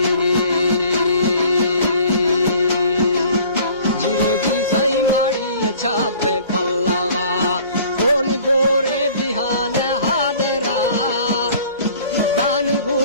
जी सही माड़ी अच्छा पे पल्लावा कौन गोरे बिहान हादरा दान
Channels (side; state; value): both; inverted; correlation -0.51